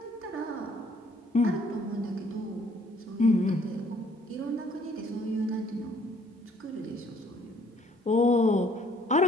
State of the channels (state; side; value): normal; both; correlation 0.62